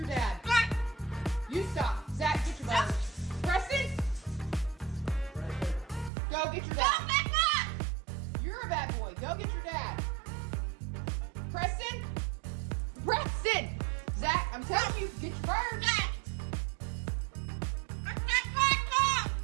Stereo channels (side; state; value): left; drops out; at 6.1 s